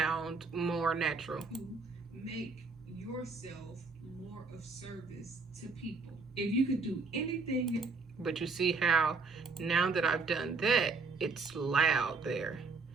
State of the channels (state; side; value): quieter; left; 4.1 dB